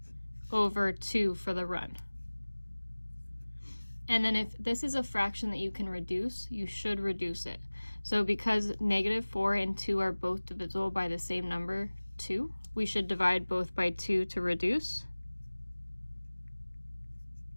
over 2 for the run. And then if this is a fraction that you can reduce, you should reduce it. So because -4 and 2 are both divisible by the same number, 2, we should divide both by 2 to reduce.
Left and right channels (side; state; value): both; inverted; correlation -1.00